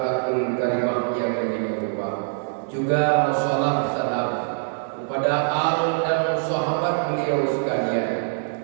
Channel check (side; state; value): left; silent; 59 dB below the other